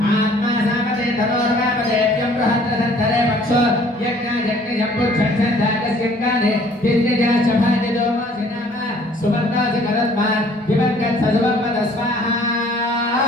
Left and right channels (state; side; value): normal; both; correlation 0.57